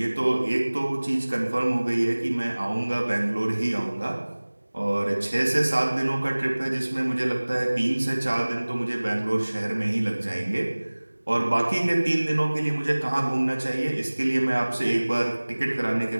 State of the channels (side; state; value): both; inverted; correlation -1.00